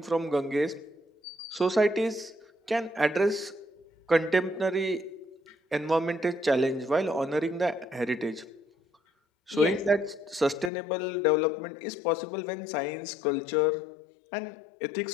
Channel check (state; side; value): drops out; right; at 10.7 s